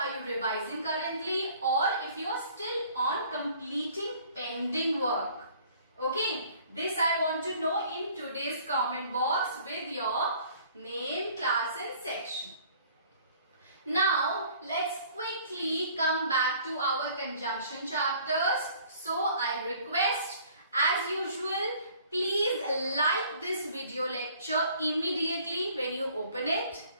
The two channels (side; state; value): both; inverted; correlation -0.54